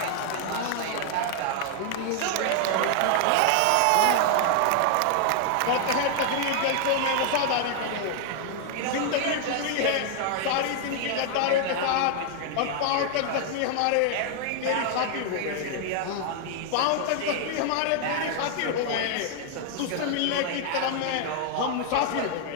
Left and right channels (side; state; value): both; different; correlation 0.00